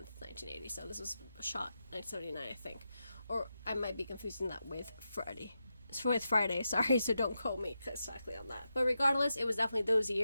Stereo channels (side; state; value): both; inverted; correlation -0.88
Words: 1980. So this was shot 1979, I think. Or I might be confusing that with Friday. Sorry, so don't quote me exactly on that. But regardless, it was definitely those